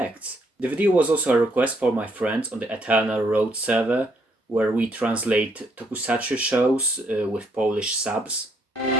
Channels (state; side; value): normal; both; correlation 0.71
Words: The video was also a request for my friends on the Eternal Road server, where we translate tokusatsu shows with Polish subs.